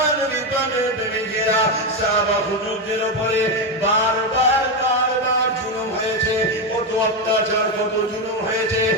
বিপদের প্রেমিকেরা সাহাবা হুজুরদের উপরে বারবার জুলুম হয়েছে, কত অত্যাচার, কত জুলুম হয়েছে।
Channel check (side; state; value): both; normal; correlation 0.09